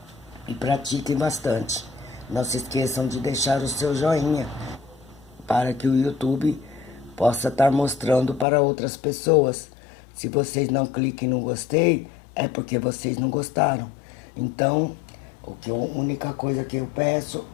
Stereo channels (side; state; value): right; drops out; at 8.5 s